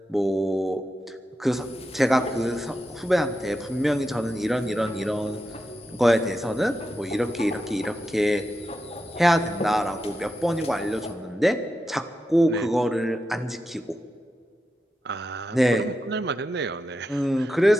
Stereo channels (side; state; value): both; normal; correlation 0.88